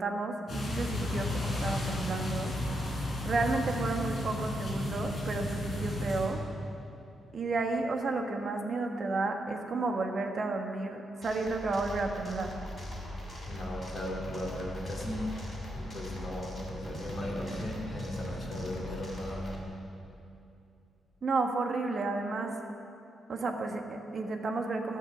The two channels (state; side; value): normal; both; correlation 0.81